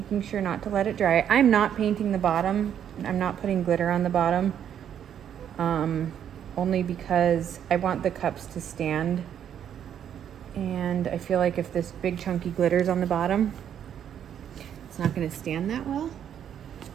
sure not to let it dry. I'm not painting the bottom. I'm not putting glitter on the bottom, only because I want the cups to stand. And I feel like if this big chunky glitter's on the bottom, it's not going to stand that well.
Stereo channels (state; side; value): quieter; left; 9.3 dB